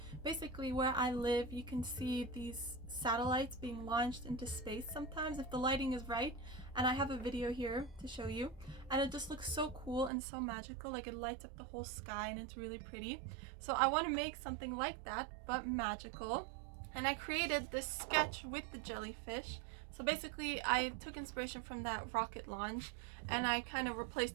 Basically, where I live, you can see these satellites being launched into space sometimes if the lighting is right, and I have a video here to show you, and it just looks so cool and so magical. Like, it lights up the whole sky and it's really pretty. So I want to make something like that but magical. And I created this sketch with the jellyfish. So basically I took inspiration from that rocket launch and I kind of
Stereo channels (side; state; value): left; drops out; at 10.1 s